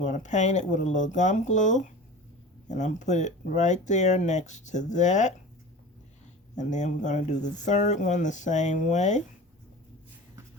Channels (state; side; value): normal; both; correlation 0.35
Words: to paint it with a little gum glue. And I'm put it right there next to that. And then we're going to do the third one the same way.